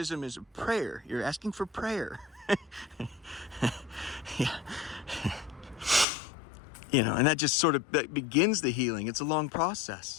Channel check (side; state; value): right; drops out; at 6.1 s